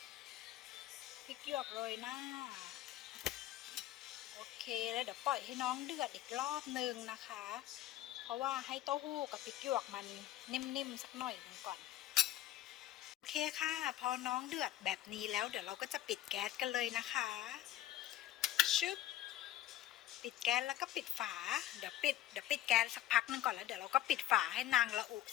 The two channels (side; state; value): right; quieter; 13.5 dB